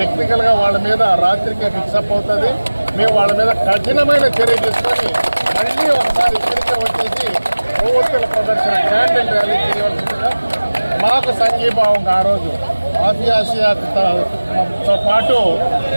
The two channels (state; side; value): inverted; both; correlation -1.00